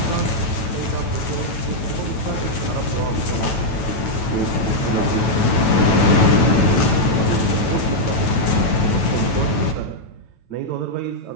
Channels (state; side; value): late; right; 9.2 ms